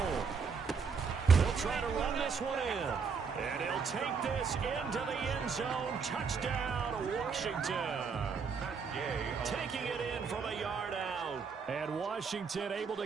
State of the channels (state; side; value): quieter; left; 5.6 dB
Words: They'll try to run this one in. And he'll take this into the end zone. Touchdown, Washington. Taking it in from a yard out. And Washington able